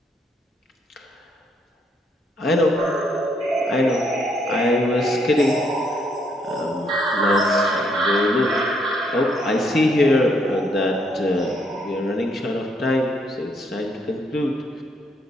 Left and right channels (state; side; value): normal; both; correlation 0.72